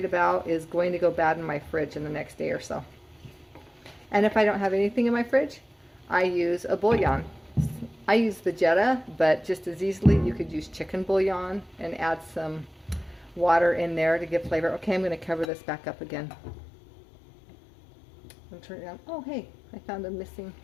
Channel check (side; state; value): right; drops out; at 15.5 s